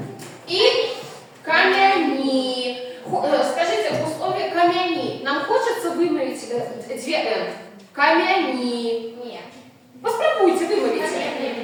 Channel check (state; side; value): identical; both; correlation 1.00